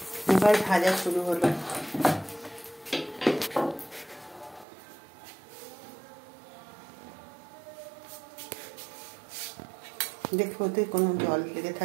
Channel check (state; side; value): drops out; left; at 4.7 s